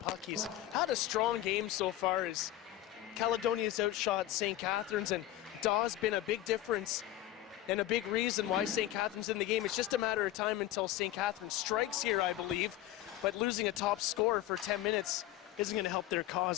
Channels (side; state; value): right; quieter; 14.0 dB